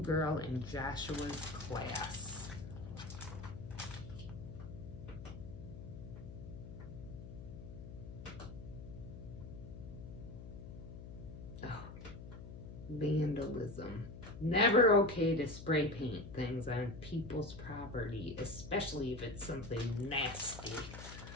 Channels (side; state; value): left; noise; hum, 11 dB below the sound